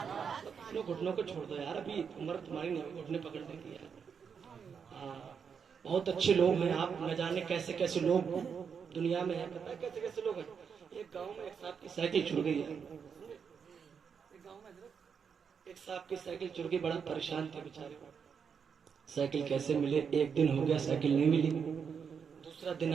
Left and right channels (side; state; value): left; quieter; 6.6 dB